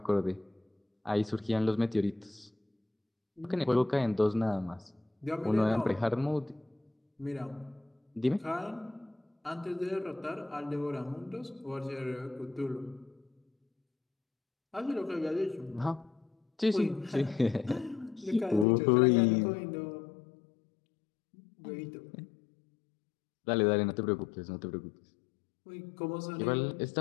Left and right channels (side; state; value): right; drops out; at 18.7 s